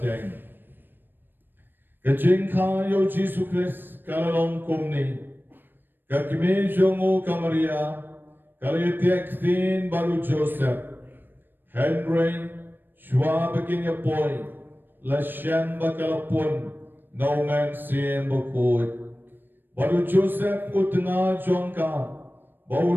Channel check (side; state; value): left; late; 0.095 ms